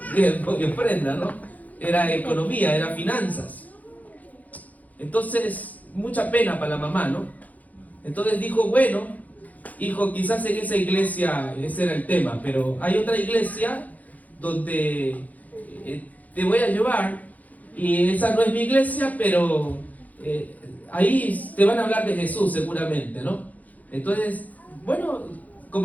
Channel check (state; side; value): late; right; 0.078 ms